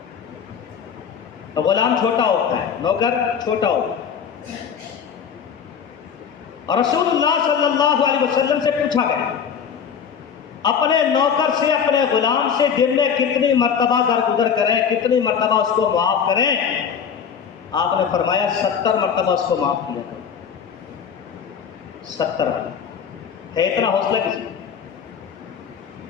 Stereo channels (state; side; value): quieter; right; 7.2 dB